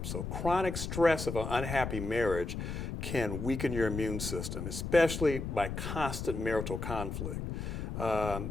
So chronic stress of an unhappy marriage can weaken your immune system, especially by constant marital conflict.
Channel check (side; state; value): left; noise; rumble, 5 dB below the sound